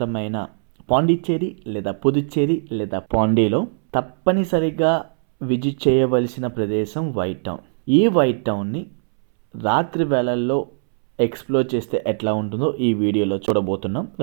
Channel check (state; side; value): silent; left; 65 dB below the other